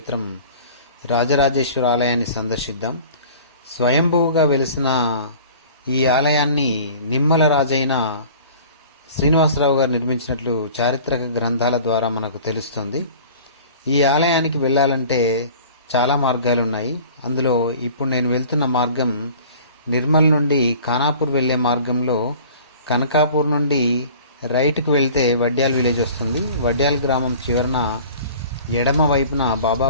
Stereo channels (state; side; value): inverted; both; correlation -0.45